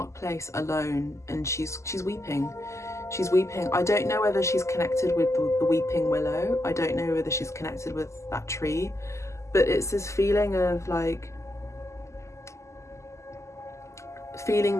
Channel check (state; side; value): late; right; 0.14 ms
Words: place alone, and she's weeping. She's weeping. I don't know whether she's connected with the weeping willow. I don't know whether she's connected with that tree, but it's this feeling of like feeling